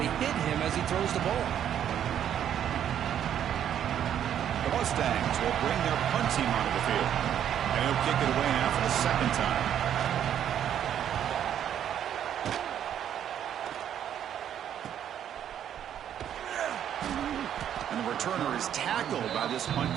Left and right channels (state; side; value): quieter; left; 9.8 dB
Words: hit him as he throws the ball. The Mustangs will bring their punt team onto the field. And he'll kick it away now for the second time. And the returner is tackled by this punt